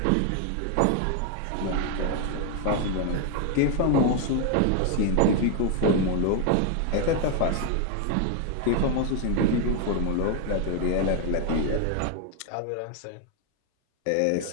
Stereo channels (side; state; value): both; different; correlation 0.01